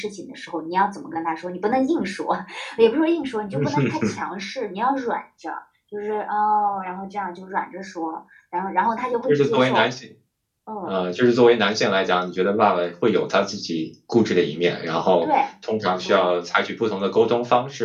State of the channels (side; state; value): both; identical; correlation 1.00